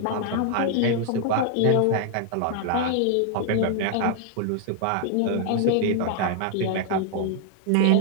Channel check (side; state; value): both; different; correlation 0.00